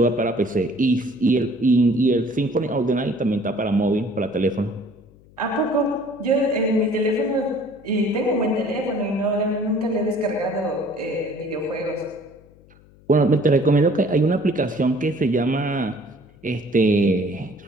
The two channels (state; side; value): noise; left; hum, 27 dB below the sound